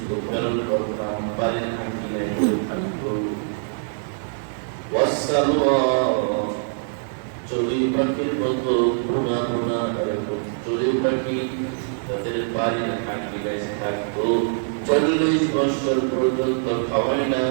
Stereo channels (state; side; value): silent; left; digital silence